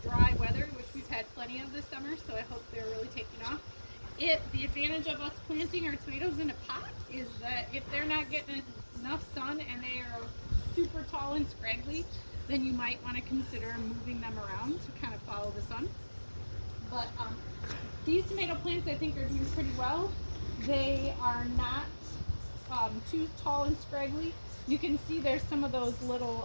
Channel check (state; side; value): inverted; both; correlation -1.00